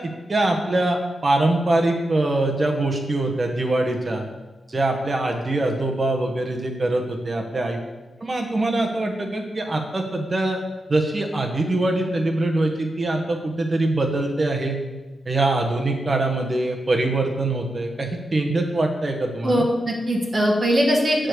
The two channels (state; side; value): normal; both; correlation 0.88